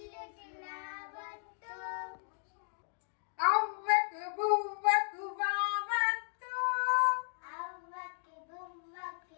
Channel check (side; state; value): right; silent; digital silence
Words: రావత్తు, అవ్వకు బువ్వకు వావత్తు, అవ్వకి